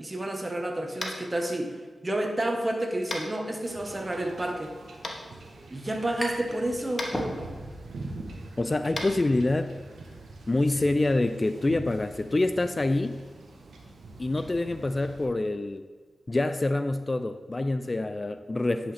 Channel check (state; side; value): normal; both; correlation 0.96